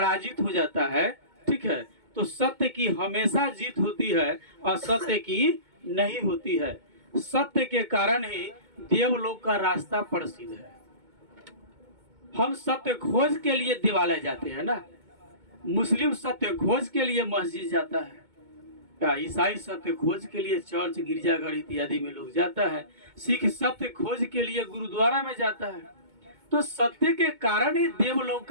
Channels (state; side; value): late; left; 2.2 ms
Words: हो जाता है, ठीक है। तो सत्य की हमेशा जीत होती है और सत्य की नहीं होती है। सत्य के कारण ही देवलोक का रास्ता प्रसिद्ध है। हम सत्य खोज के लिए दिवालय जाते हैं ना, मुस्लिम सत्य खोज के लिए मस्जिद जाता है, क्या ईसाई सत्य खोज के लिए चर्च गिरजाघर इत्यादि में लोग जाता है, सिख सत्य खोज के लिए गुरुद्वारा में जाता है। तो सत्य के कारण ही देवलोक